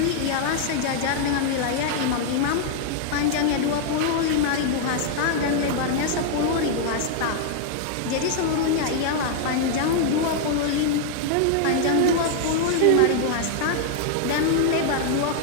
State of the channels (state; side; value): different; both; correlation 0.00